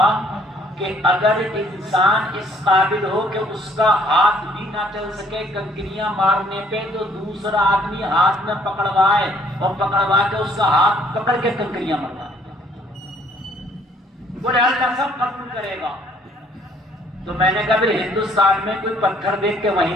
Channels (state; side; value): normal; both; correlation 0.61